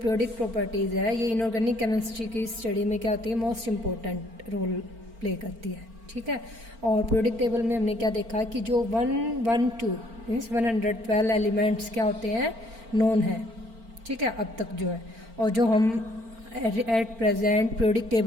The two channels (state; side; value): late; left; 4.4 ms